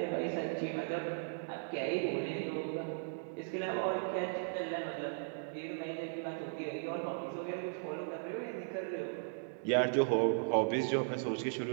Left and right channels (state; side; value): silent; left; digital silence